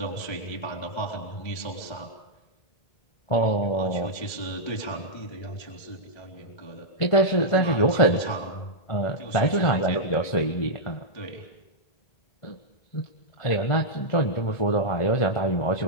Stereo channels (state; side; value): late; right; 1.3 ms